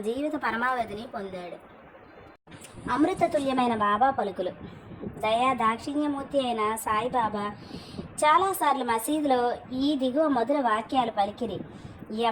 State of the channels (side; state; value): both; identical; correlation 1.00